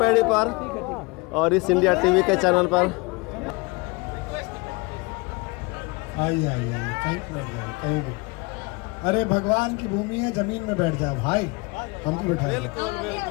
पर और इस इंडिया टीवी के चैनल पर। आइए कहीं भी। अरे भगवान की भूमि है, जमीन में बैठ जाओ भाई, हमको बिठा बैठ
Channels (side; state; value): right; quieter; 27.0 dB